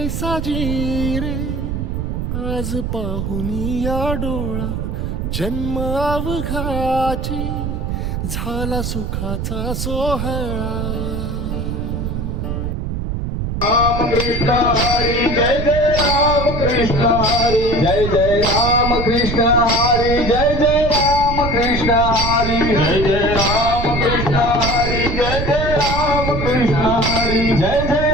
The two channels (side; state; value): right; noise; rumble, 3 dB below the sound